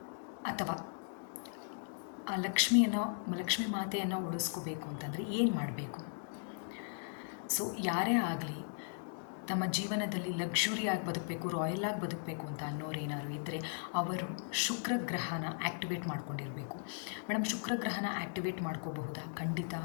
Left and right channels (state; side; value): silent; right; digital silence